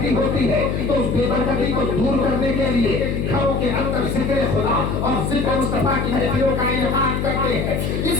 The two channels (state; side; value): noise; left; hum, 1 dB below the sound